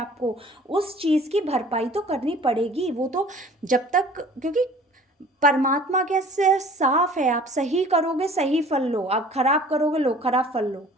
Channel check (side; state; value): both; normal; correlation 0.48